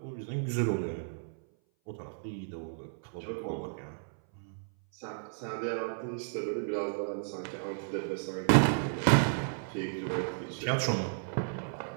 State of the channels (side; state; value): left; silent; 56 dB below the other